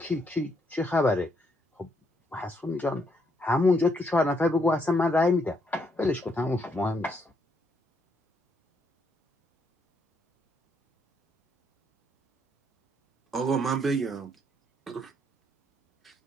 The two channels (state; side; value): normal; both; correlation 0.74